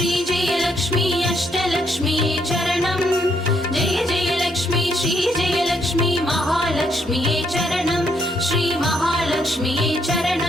जय लक्ष्मी अष्टलक्ष्म्यै चरणं जय जय लक्ष्मी श्री जय लक्ष्मी महालक्ष्म्यै चरणं श्री महालक्ष्म्यै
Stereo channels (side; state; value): both; normal; correlation 0.73